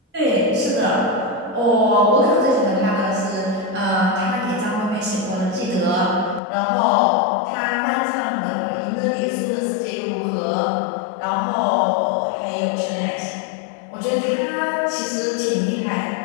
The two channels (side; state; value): right; drops out; at 6.4 s